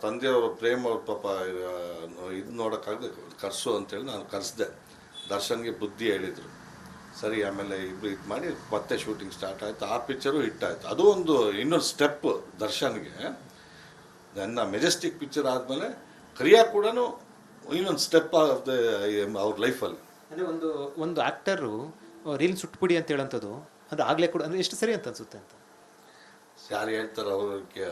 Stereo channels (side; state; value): both; identical; correlation 1.00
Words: ತಂದೆಯವರು ಪ್ರೇಮ್ ಅವ್ರ ಪಾಪ ಇದು ನೋಡೋಕ್ಕಾಗದೆ ಕರ್ಸು ಅಂತೇಳಿ ನಾನು ಕರೆಸ್ದೆ. ದರ್ಶನ್ಗೆ ಬುದ್ಧಿ ಹೇಳಿದರು. ಸರಿ, ಆಮೇಲೆ ಇಬ್ಬರು ಇದು ಮಾಡಿ ಮತ್ತೆ ಶೂಟಿಂಗ್ ಸ್ಟಾರ್ಟ್ ಆಯಿತು. ಆ ಪಿಕ್ಚರು ಹಿಟ್ ಆಯಿತು. ಅದು ಒಂದು ಇನ್ನೊಂದು ಸ್ಟೆಪ್ ದರ್ಶನ್ಗೆ. ನನ್ನ ಮೆಜೆಸ್ಟಿಕ್ ಪಿಕ್ಚರ್ ಆದಮೇಲೆ ಕರಿಯಾ ಕೂಡ ಇನ್ನೊಂದು ಸ್ಟೆಪ್ ಆಫ್ ದ ಅವ್ರ ಲೈಫಲ್ಲಿ. ಅಂದರೆ ಒಂದು ಆ್ಯಕ್ಟರು ರೀಲ್ ಸುಟ್ಬಿಡಿ ಅಂತ ಹೇಳೋಂಥದ್ದು ಅಂದರೆ ಆಗಲೇ ಕೂಡ ಅಂದರೆ ಎಷ್ಟು ಸರಿ ಅಂತ ಅನಿಸುತ್ತೆ ಅಂತ ಯಾರು ಹೇಳ್ತಾರೆ